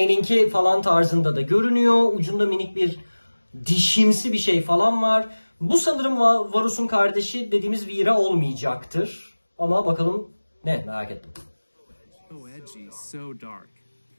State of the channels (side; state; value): both; inverted; correlation -1.00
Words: falan tarzında da görünüyor. Ucunda minik bir dişimsi bir şey falan var. Bu sanırım Varus'un kardeşi dediğimiz Vira olmayacaktır. Ama bakalım ne, merak ettim. So edgy, so dark.